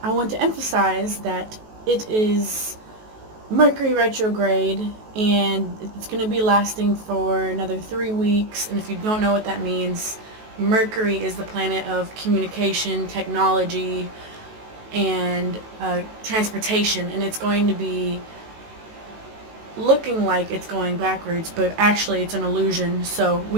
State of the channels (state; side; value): late; left; 19 ms